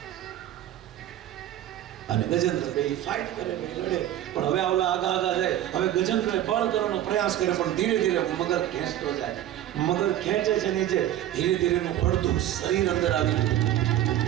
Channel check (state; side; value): quieter; left; 12.4 dB